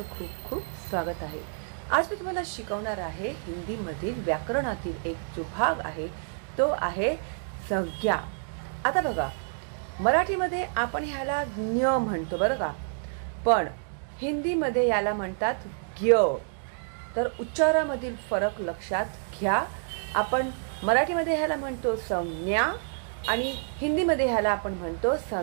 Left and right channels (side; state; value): left; silent; digital silence